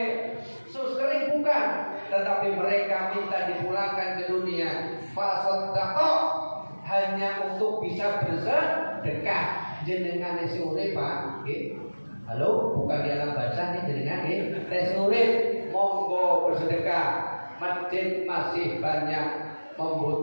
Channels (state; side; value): inverted; both; correlation -1.00